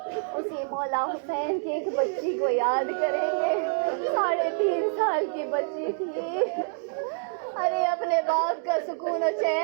اسی مولا حسین کی ایک بچی کو یاد کریں گے. 3.5 سال کی بچی تھی. ارے اپنے باپ کا سکون و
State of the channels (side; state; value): left; silent; digital silence